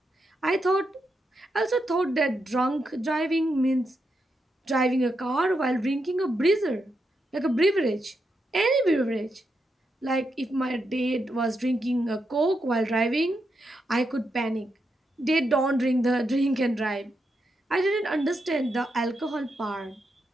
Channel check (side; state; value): both; normal; correlation 0.83